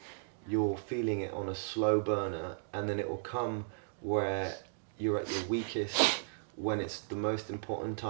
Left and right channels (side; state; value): left; silent; digital silence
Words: you're feeling it on a slow burner, and then it will come where you're at your weakest, when it's the most important